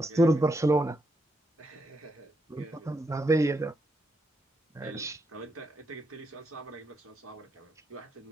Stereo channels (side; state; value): both; normal; correlation 0.81